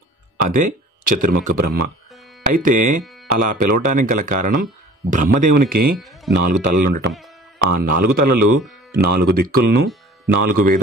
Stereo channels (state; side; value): normal; both; correlation 0.47